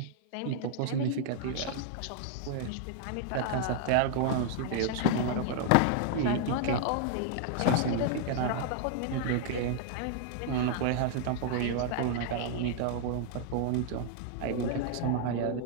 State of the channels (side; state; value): both; different; correlation 0.00